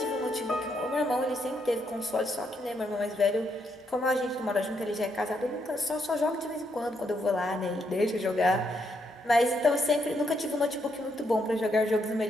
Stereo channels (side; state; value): both; normal; correlation 0.77